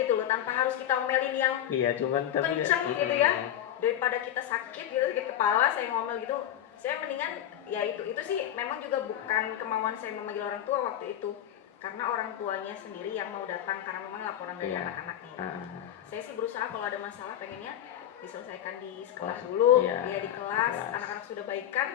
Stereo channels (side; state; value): right; quieter; 11.2 dB